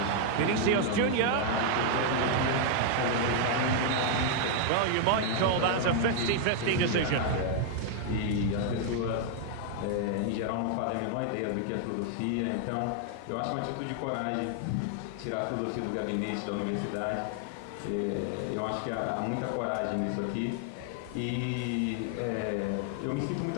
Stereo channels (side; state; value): both; different; correlation 0.00